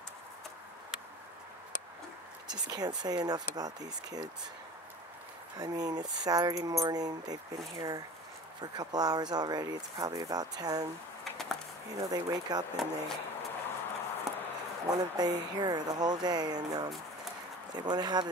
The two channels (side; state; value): both; normal; correlation 0.38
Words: Just can't say enough about these kids. I mean, it's Saturday morning. They've been here for a couple hours already. It's probably about 10. They wake up and they want to be here the whole day, and they want to have